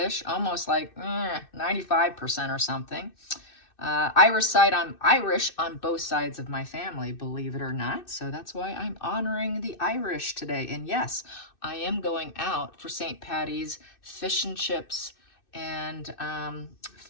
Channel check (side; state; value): right; late; 2.6 ms